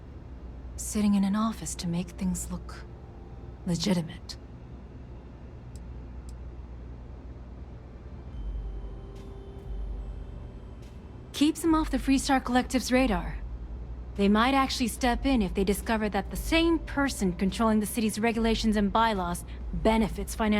Sitting in an office to make things look legitimate. Keeps him off the Freestar Collective's radar. They might actually step in if they discover that the same person controlling the city's regulations and bylaws benefits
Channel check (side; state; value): both; identical; correlation 1.00